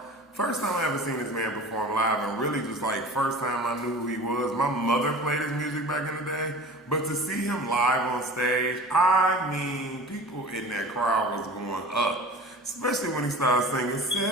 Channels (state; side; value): normal; both; correlation 0.39